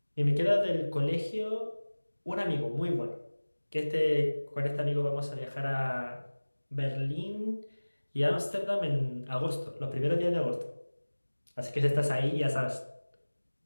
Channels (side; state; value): both; inverted; correlation -1.00